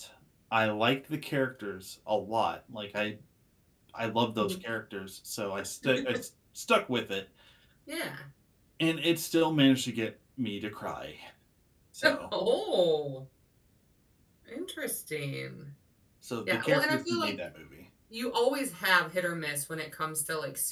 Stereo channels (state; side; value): identical; both; correlation 1.00